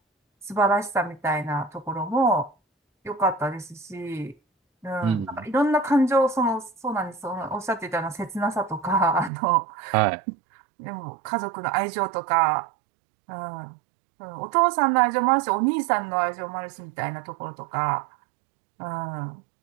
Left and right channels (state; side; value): drops out; left; at 9.3 s